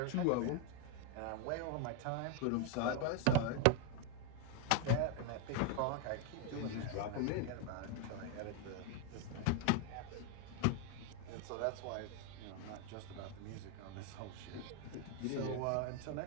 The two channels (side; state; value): both; different; correlation 0.01